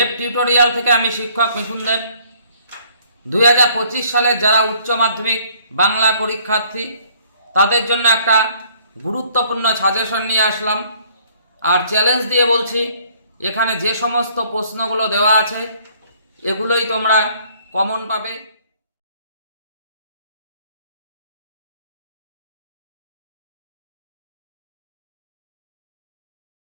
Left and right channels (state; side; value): inverted; both; correlation -0.60